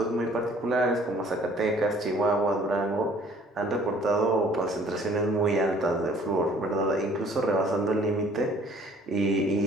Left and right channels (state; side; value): normal; both; correlation 0.56